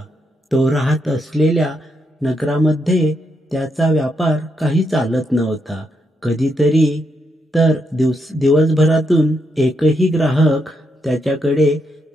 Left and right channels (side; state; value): both; normal; correlation 0.80